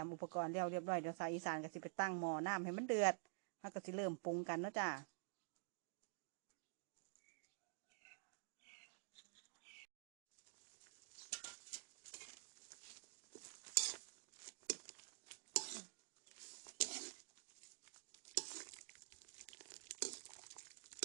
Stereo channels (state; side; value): silent; left; digital silence